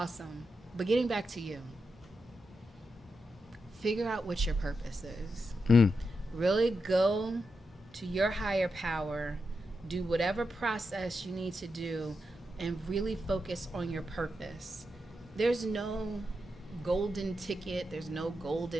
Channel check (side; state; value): both; normal; correlation 0.87